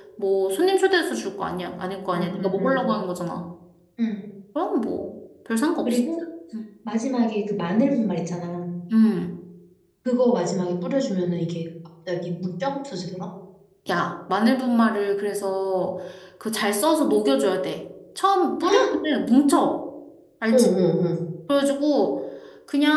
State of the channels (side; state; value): both; identical; correlation 1.00